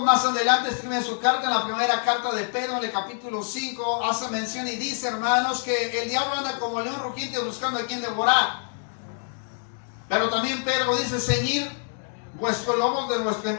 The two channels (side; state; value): right; silent; digital silence